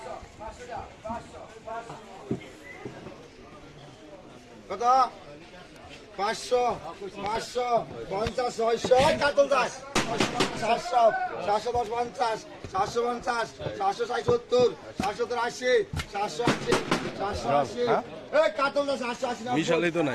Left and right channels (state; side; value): identical; both; correlation 1.00